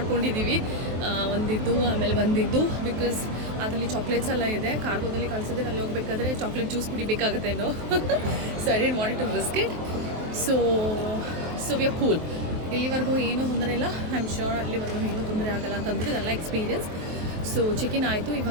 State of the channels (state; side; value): late; left; 23 ms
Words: ಒಂದಿದ್ದು ಆಮೇಲೆ ಒಂದಿದ್ದು, ಬಿಕಾಸ್ ಅದರಲ್ಲಿ ಚಾಕ್ಲೇಟ್ಸ್ ಎಲ್ಲ ಇದೆ. ಕಾರ್ಗೋದಲ್ಲಿ ಕಳಿಸಿದ್ರೆ ಅಲ್ಲಿ ಹೋಗ್ಬೇಕಾದ್ರೆ ಚಾಕ್ಲೇಟ್ ಜ್ಯೂಸ್ ಕುಡಿಬೇಕಾಗತ್ತೇನೋ. So I didn't want to risk it. So we are cool. ಇಲ್ಲಿವರೆಗೂ ಏನೂ ತೊಂದರೆ ಇಲ್ಲ. ಐ ಆಮ್ ಶ್ಯೂರ್ ಅಲ್ಲಿವರೆಗೂ ಏನೂ ತೊಂದರೆ ಆಗಲ್ಲ ಅಂತಂದ್ಬಿಟ್ಟು ಇದೆಲ್ಲ ಎಕ್ಸ್ಪೀರಿಯನ್ಸ್. ಸೊ ಚೆಕಿನ್ ಆಯಿತು.